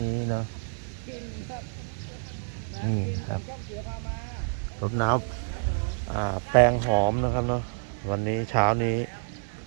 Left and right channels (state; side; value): silent; left; digital silence